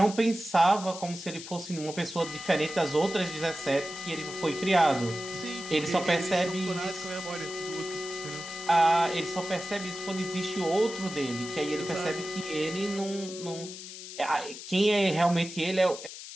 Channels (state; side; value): noise; left; hiss, 12 dB below the sound